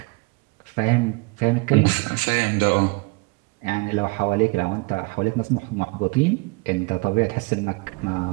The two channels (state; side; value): quieter; left; 27.0 dB